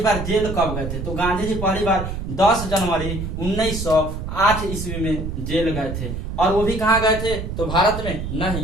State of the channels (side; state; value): right; noise; rumble, 5 dB below the sound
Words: बार जेल कब गए थे, तो गांधी जी पहली बार 10 जनवरी 1908 ईस्वी में जेल गए थे। और वो भी कहाँ गए थे, तो भारत में